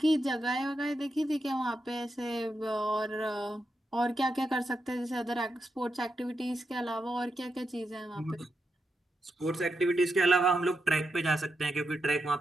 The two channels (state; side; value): normal; both; correlation 0.85